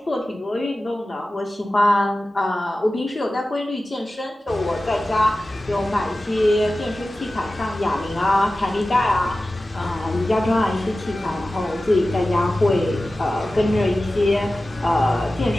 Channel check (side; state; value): both; normal; correlation 0.95